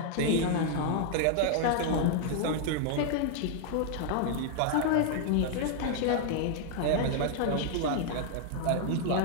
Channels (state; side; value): different; both; correlation 0.00